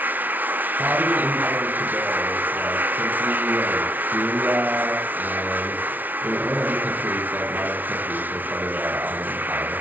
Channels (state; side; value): late; left; 0.081 ms